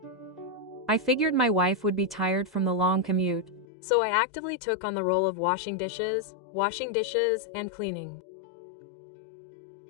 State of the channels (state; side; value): drops out; right; at 3.7 s